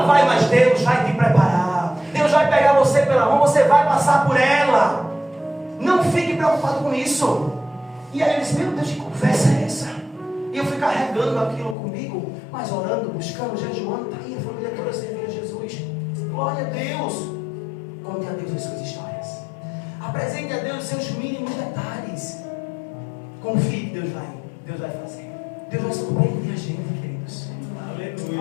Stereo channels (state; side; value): drops out; right; at 11.8 s